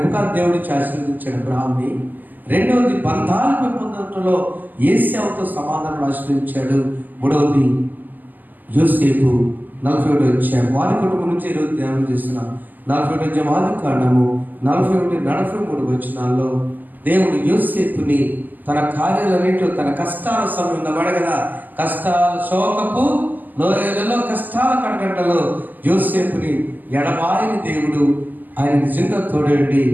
దేవుడిని ఆశీర్వదించాడు అబ్రహాంని. రెండవది బంధాలు పెంపొందడంలో ఏశావుతో సమాధానం ఆశీర్వదించాడు. మూడవది యోసేపు 41 వచ్చాడు. వారి కుటుంబం నుంచి ఈరోజు ధ్యానం చేస్తున్నాం. 41 ఆదికాండము 41-43 వచనాల్లో దేవుడు యోసేపుని తన కార్యాలన్నింటిలో తన కష్టాల సమయంలో వడగదా, కష్టాల శోకపు లోయలలో కష్టాల కడగంటలో యోసేపుని ఎడబాయని దేవుడు ఆయన నిజంగా తోడండి.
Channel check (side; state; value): left; late; 0.085 ms